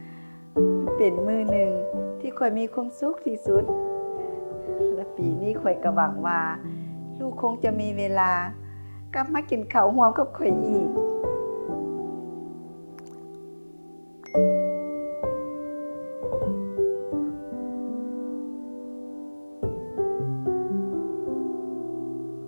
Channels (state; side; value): inverted; both; correlation -1.00